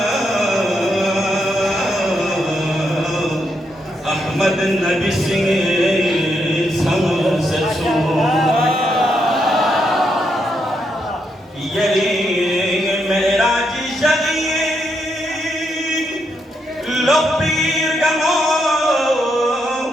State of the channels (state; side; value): normal; both; correlation 0.80